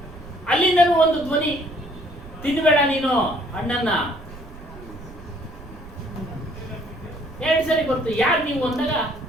ಅಲ್ಲಿಂದನೂ ಒಂದು ಧ್ವನಿ, ತಿನ್ಬೇಡ ನೀನು ಹಣ್ಣನ್ನ. 2 ಸರಿ ಬರ್ತು. ಯಾರು ನೀವು ಅಂದಾಗ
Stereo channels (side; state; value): right; noise; rumble, 17 dB below the sound